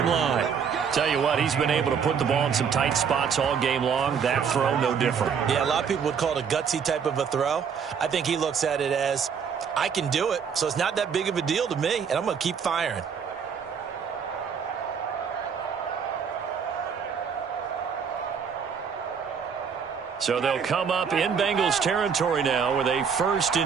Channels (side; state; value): left; quieter; 6.8 dB